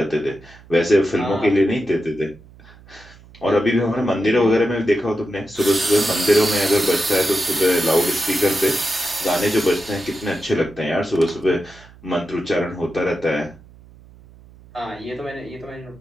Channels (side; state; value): right; noise; hum, 23 dB below the sound